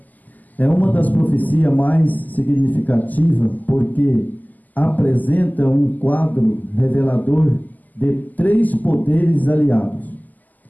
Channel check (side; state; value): right; late; 0.082 ms